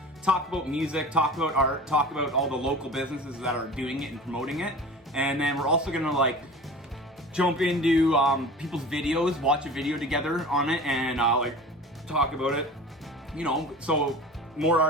Talk about music, talk about art, talk about all the local businesses that are doing it and promoting it. And then we're also gonna like jump into people's videos, watch a video together on it, and like talk about it. You know, so more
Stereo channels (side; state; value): both; normal; correlation 0.38